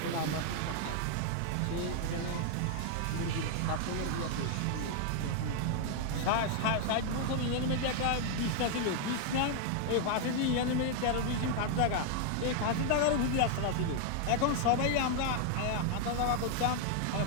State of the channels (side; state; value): both; different; correlation 0.00